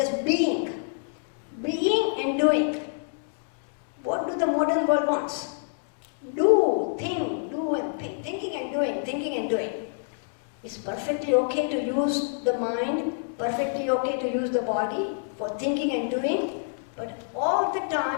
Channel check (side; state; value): right; silent; digital silence